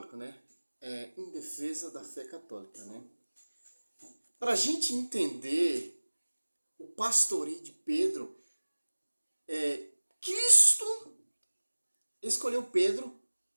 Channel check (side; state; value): both; inverted; correlation -1.00